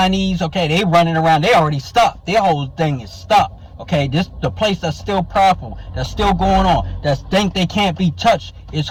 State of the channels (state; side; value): identical; both; correlation 1.00